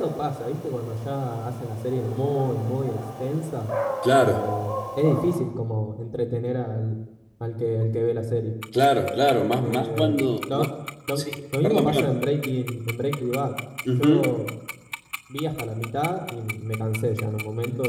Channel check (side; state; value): both; identical; correlation 1.00